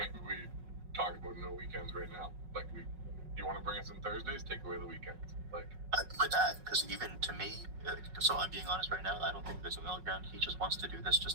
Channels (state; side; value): late; left; 5.4 ms